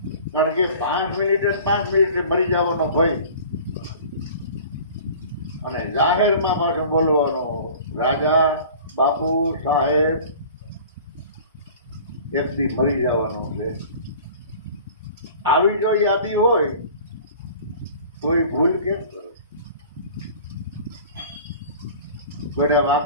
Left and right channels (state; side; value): inverted; both; correlation -0.44